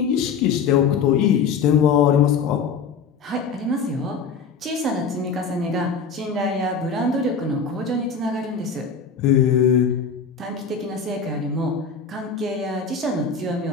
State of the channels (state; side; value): quieter; right; 5.6 dB